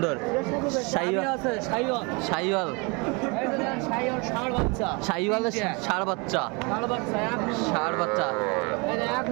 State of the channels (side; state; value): left; quieter; 29.7 dB